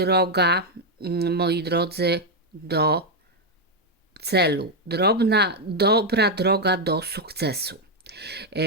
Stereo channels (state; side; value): normal; both; correlation 0.03